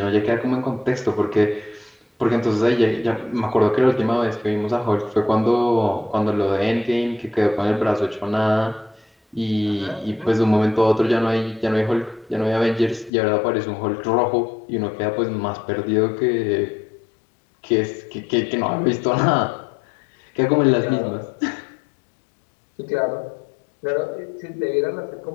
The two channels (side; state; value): right; drops out; at 13.1 s